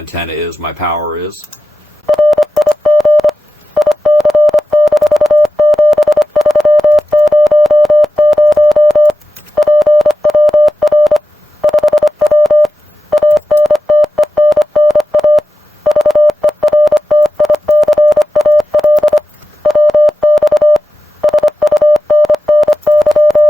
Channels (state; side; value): normal; both; correlation 0.93